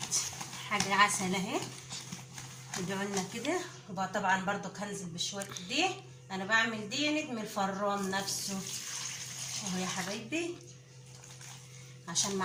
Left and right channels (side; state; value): both; identical; correlation 1.00